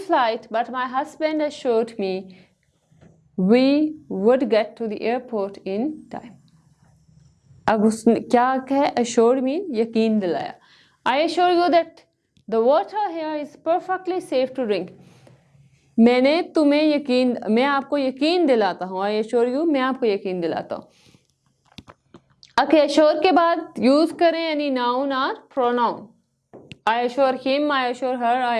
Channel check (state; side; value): identical; both; correlation 1.00